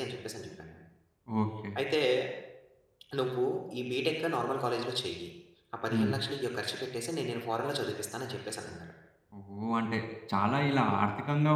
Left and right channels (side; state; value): both; identical; correlation 1.00